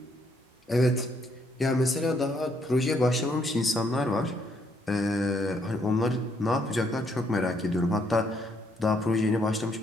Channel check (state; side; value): normal; both; correlation 0.71